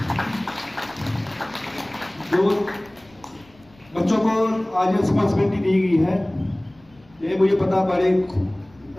जो बच्चों को आज रिस्पॉन्सिबिलिटी दी गई है, ये मुझे पता बड़े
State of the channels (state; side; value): noise; left; rumble, 29 dB below the sound